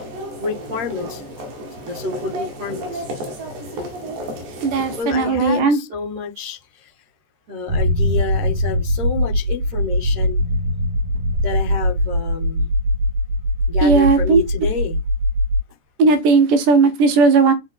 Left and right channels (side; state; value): left; late; 14 ms